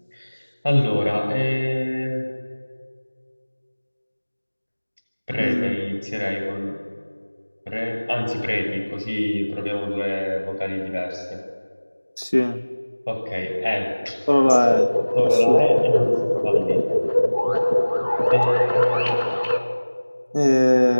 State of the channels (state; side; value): inverted; both; correlation -1.00